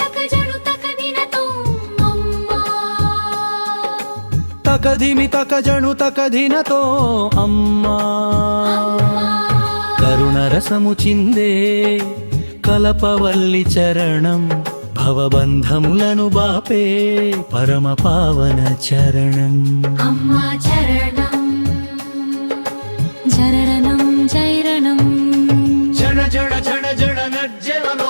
తకధిమి తకజను తకధినతో అమ్మా కరుణ రసము చిందే కలపవల్లి చరణం భవబంధములను బాపే పరమ పావన చరణం అమ్మా చరణం జరణం జైరణం జణ జణ జణ జణ నజ్జనలో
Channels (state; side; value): inverted; both; correlation -1.00